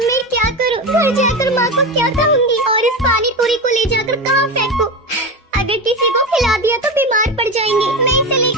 क्या करूं? घर जाकर माँ को क्या कहूँगी? और इस पानी पूरी को ले जाकर कहाँ फेंकूं? अगर किसी को खिला दिया तो बीमार पड़ जाएंगे। मैं इसे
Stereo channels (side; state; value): both; normal; correlation 0.20